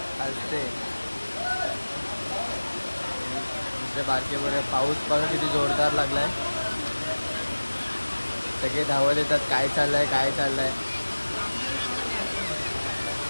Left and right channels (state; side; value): inverted; both; correlation -1.00